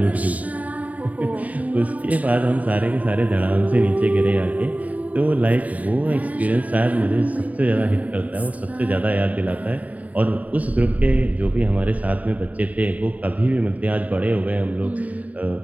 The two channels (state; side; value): late; left; 0.071 ms